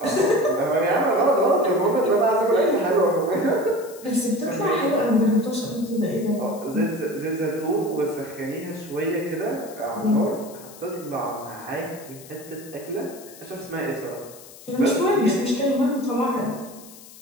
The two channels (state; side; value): noise; left; hiss, 19 dB below the sound